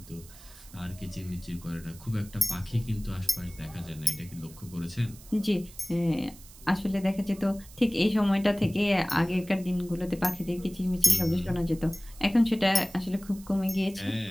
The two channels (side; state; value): right; noise; hiss, 20 dB below the sound